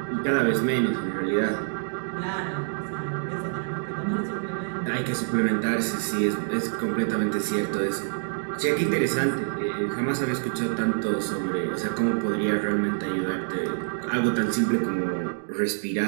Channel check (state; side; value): silent; left; digital silence